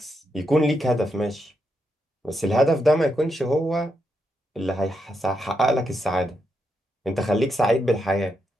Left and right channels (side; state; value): both; normal; correlation 0.82